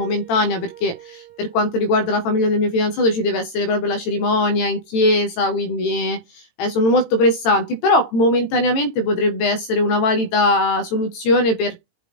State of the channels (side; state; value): right; late; 18 ms